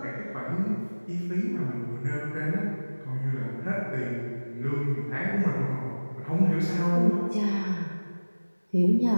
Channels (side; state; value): both; inverted; correlation -1.00